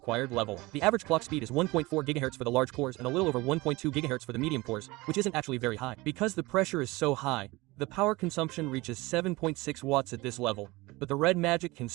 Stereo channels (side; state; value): left; quieter; 21.8 dB